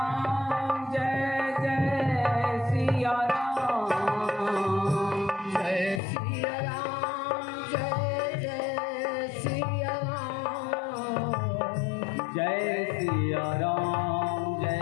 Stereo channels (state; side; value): drops out; right; at 6.0 s